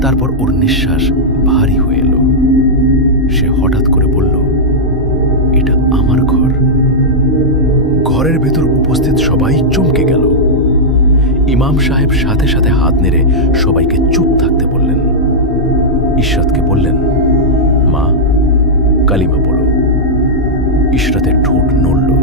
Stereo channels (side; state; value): both; normal; correlation -0.08